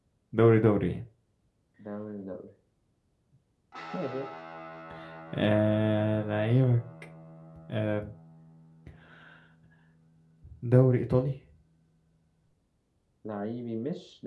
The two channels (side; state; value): both; identical; correlation 1.00